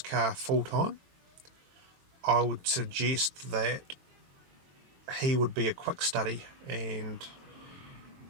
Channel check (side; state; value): left; late; 22 ms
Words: full-time, I would suggest that he would be a quick study, and